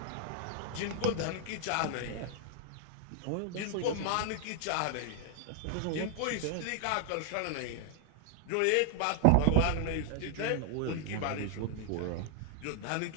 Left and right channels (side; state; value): both; different; correlation 0.00